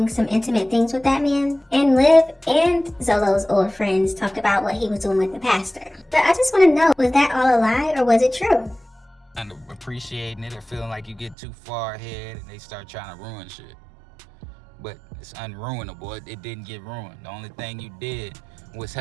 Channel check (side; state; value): left; drops out; at 11.4 s